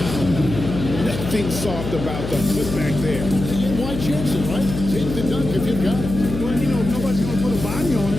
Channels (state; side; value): noise; left; hum, 6 dB below the sound